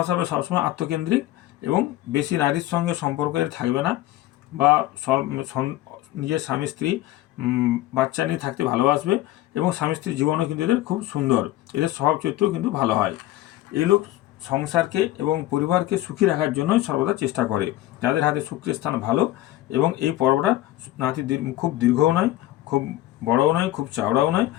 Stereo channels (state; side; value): quieter; right; 15.5 dB